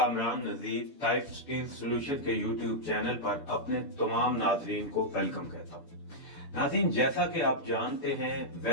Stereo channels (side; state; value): right; late; 6.9 ms